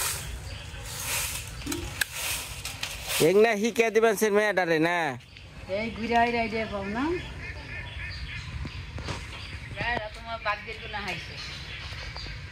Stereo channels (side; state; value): both; identical; correlation 1.00